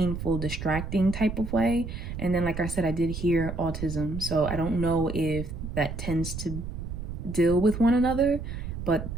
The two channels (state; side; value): noise; right; rumble, 7 dB below the sound